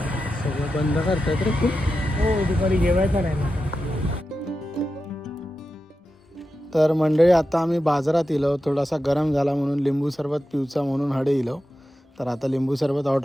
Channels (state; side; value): normal; both; correlation 0.91